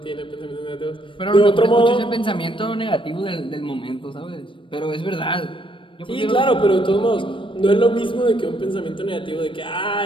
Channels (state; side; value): late; right; 0.25 ms